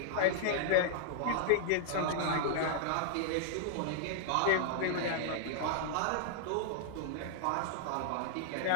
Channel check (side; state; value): both; different; correlation -0.01